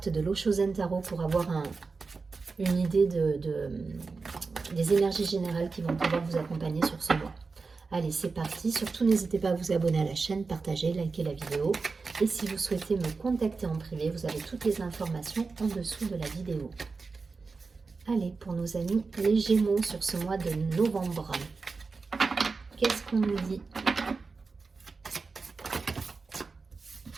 de l'Oshozen Tarot pour avoir une idée des énergies générales qui vont pouvoir vous accompagner sur ce mois. Allez, c'est parti. Surtout, n'hésitez pas à vous abonner à la chaîne, partager, liker la vidéo. Et si vous souhaitez me contacter en privé, vous avez toutes les informations en dessous de la vidéo. Allez, pour nos amis les Gémeaux sur ce mois de novembre, qu'est-ce qu'on nous dit?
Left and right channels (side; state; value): left; quieter; 4.4 dB